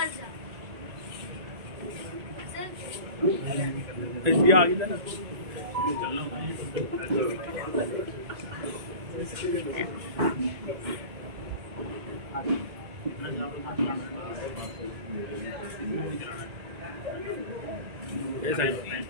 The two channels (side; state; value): left; late; 1.9 ms